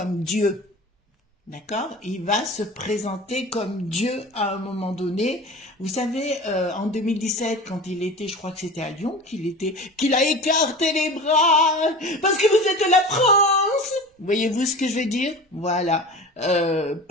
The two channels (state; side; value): normal; both; correlation 0.35